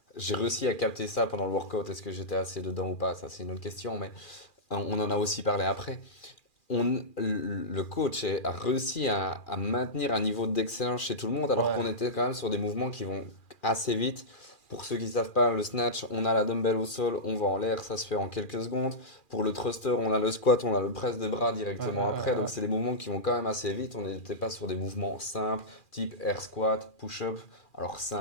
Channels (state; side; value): late; right; 2.4 ms